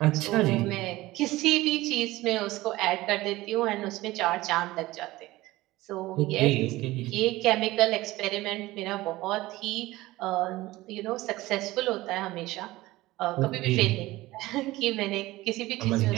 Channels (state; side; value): quieter; left; 18.4 dB